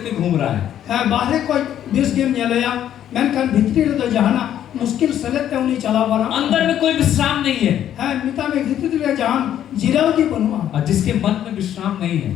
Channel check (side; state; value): right; quieter; 10.7 dB